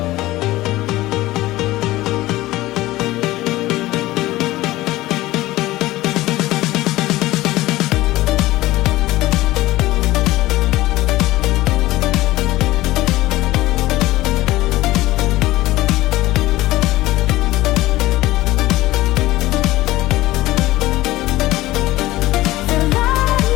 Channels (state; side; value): quieter; right; 17.4 dB